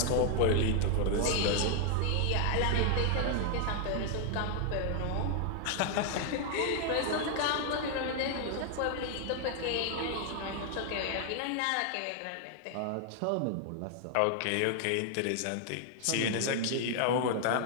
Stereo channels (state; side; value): different; both; correlation 0.00